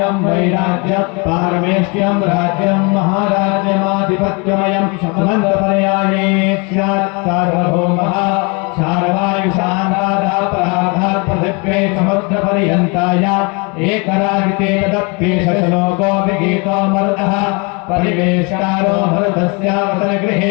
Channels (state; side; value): quieter; right; 31.2 dB